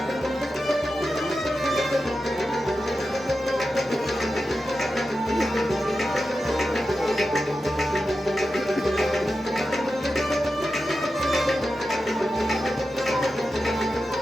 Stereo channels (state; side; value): normal; both; correlation 0.91